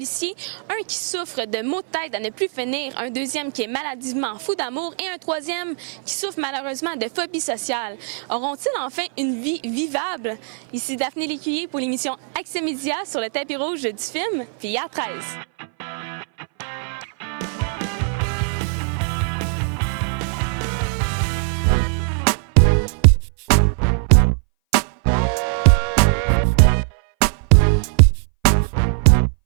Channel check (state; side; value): silent; left; 61 dB below the other